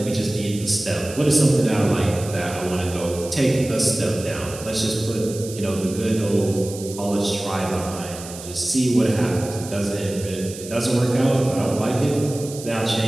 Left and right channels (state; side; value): noise; right; hiss, 13 dB below the sound